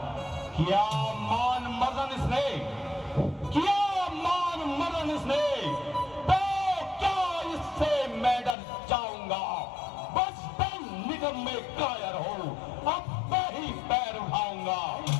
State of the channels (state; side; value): drops out; right; at 8.6 s